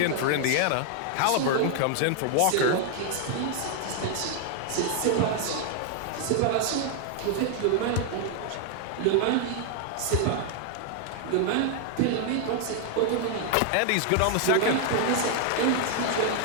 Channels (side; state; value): both; different; correlation 0.00